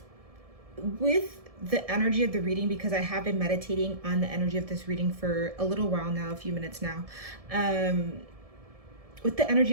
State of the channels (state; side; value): late; left; 1.7 ms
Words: the energy of the reading, because I have been meditating on the energy of this reading for a little while now, a few minutes now. With the energy